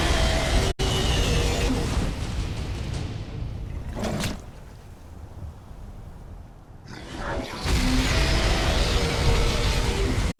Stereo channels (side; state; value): both; identical; correlation 1.00